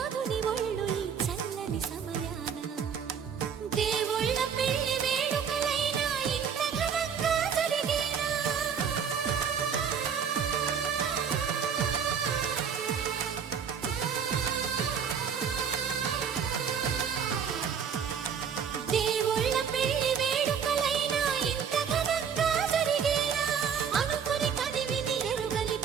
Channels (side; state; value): left; quieter; 7.2 dB